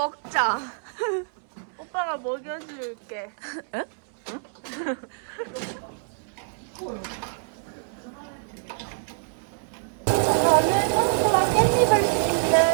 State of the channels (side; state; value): left; silent; 61 dB below the other